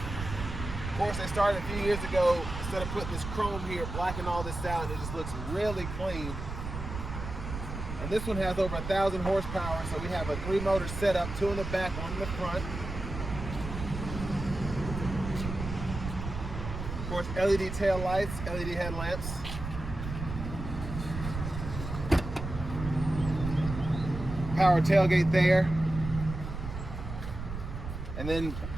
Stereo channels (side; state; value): right; noise; rumble, 7 dB below the sound